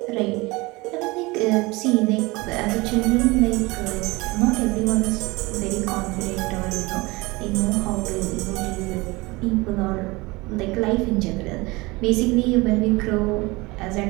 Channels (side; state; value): left; quieter; 23.3 dB